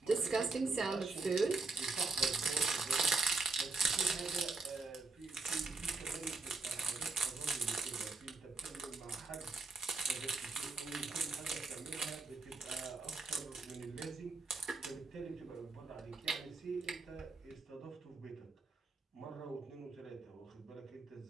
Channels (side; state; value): left; quieter; 3.9 dB